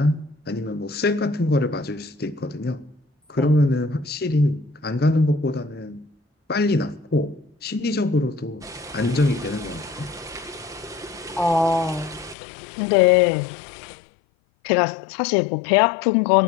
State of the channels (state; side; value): drops out; right; at 12.4 s